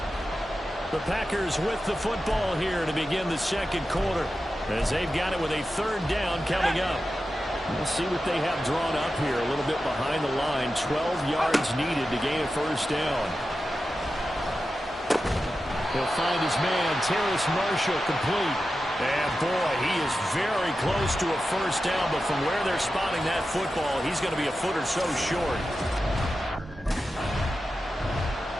The Packers with the football here to begin the second quarter, as they've got it with a third down coming up. We'll see what they have drawn up here. A little bit behind the line. 12 yards needed to gain a first down. He'll find his man, Terrace Marshall, complete. And boy, he is very close to a first down, but from where they're spotting that football, he's going to be a foot or so short.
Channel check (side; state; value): both; normal; correlation 0.92